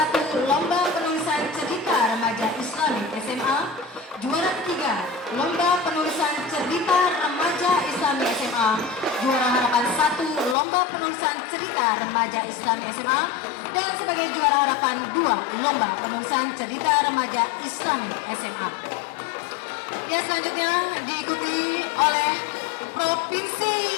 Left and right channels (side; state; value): right; drops out; at 10.6 s